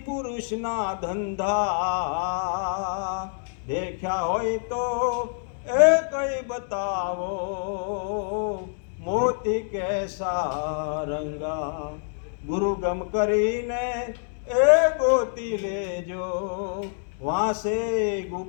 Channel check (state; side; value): silent; right; 61 dB below the other